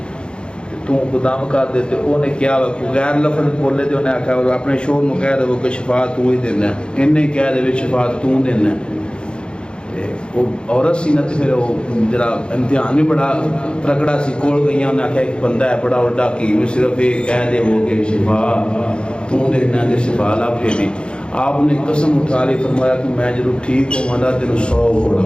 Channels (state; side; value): late; right; 0.053 ms